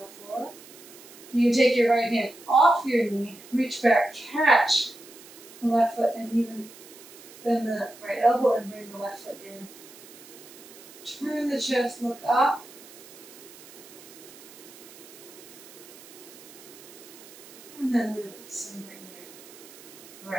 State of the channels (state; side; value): noise; right; hiss, 19 dB below the sound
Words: floor. You can take your right hand off your knee, reach back, catch the left foot, and even bend the right elbow and bring the left foot in. Turn the chest, look up, And then release and bring your